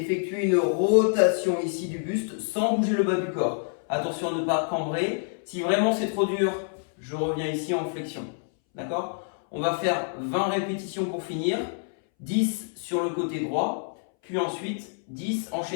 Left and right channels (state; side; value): silent; right; 60 dB below the other